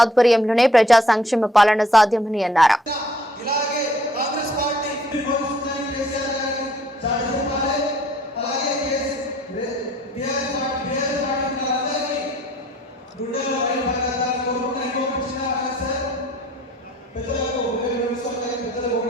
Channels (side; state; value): both; normal; correlation 0.60